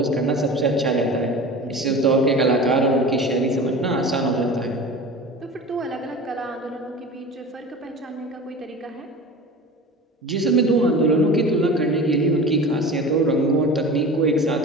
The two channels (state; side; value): normal; both; correlation 0.35